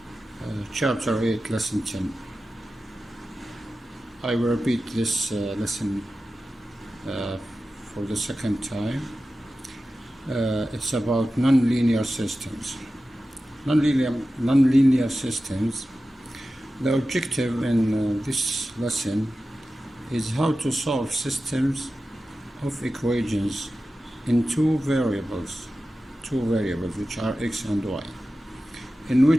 Chapter 8, Lesson 10. I will repeat this lesson for the second time. It's about nonlinear systems. Nonlinear systems. The objective in this lesson is how to solve systems of equations in two variables which are x and y, in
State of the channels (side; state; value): both; normal; correlation 0.94